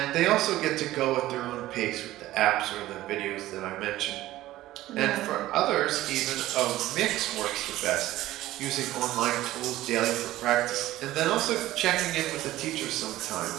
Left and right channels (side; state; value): left; quieter; 15.6 dB